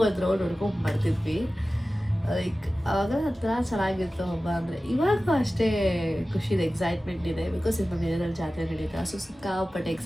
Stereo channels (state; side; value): normal; both; correlation 0.96